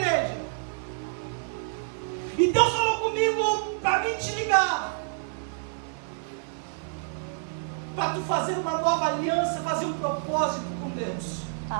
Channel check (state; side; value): silent; left; digital silence